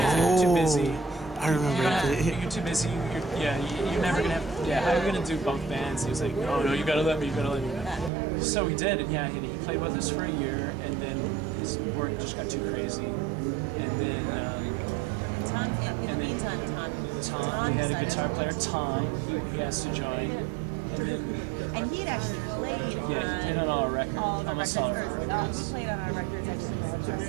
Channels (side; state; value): left; drops out; at 8.1 s